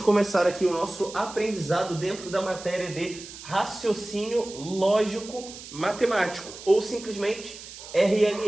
aqui o nosso aprendizado dentro da matéria de raciocínio lógico matemático, ou simplesmente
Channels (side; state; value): right; noise; hiss, 14 dB below the sound